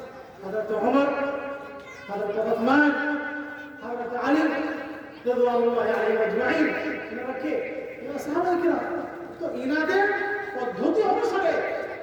হযরত ওমর, হযরত উসমান, হযরত আলী রাদিয়াল্লাহু আলাইহিম আজমাইন। এনারা কে? এনারা সাহাবায়ে কেরাম। তো এনাদের পদ্ধতি অনুসারে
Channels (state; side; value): identical; both; correlation 1.00